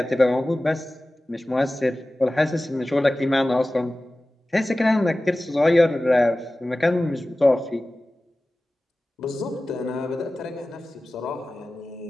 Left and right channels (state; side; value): normal; both; correlation 0.96